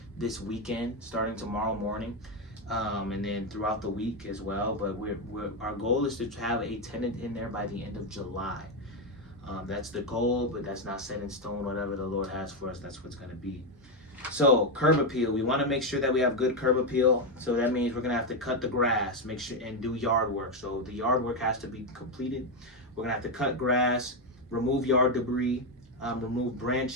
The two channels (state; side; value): normal; both; correlation 0.06